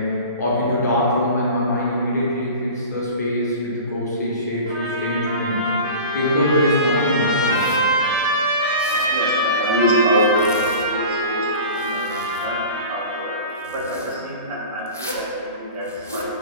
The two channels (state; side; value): inverted; both; correlation -0.37